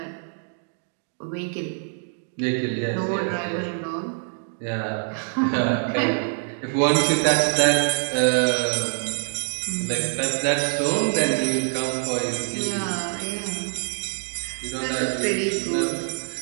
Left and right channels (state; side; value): silent; left; 62 dB below the other